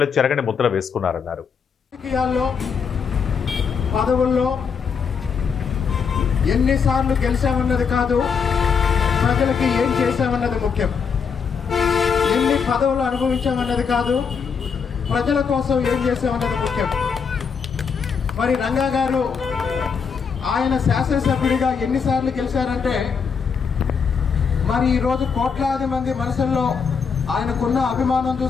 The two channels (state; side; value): quieter; right; 6.2 dB